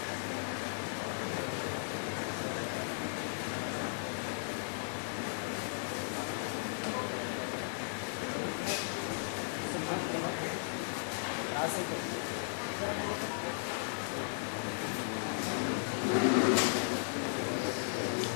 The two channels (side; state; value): right; silent; digital silence